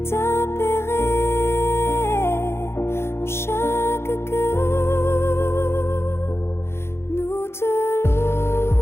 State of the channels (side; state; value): right; late; 0.12 ms